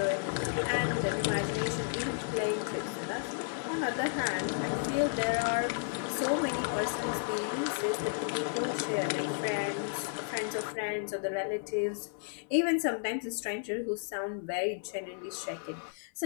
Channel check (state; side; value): silent; right; 56 dB below the other